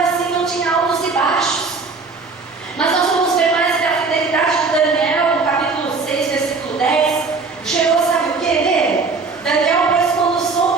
assim, não tinha altos e baixos. Mas nós vamos ver mais que a fidelidade de Daniel, no capítulo 6, versículo 10, chegou, sabe o que nele? Daniel, pois, quando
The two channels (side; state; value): left; quieter; 4.3 dB